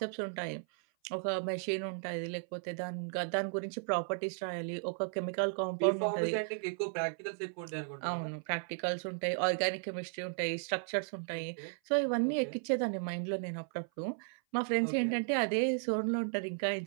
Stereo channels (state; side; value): silent; left; 54 dB below the other